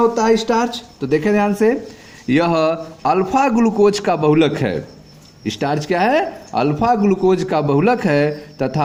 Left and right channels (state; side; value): identical; both; correlation 1.00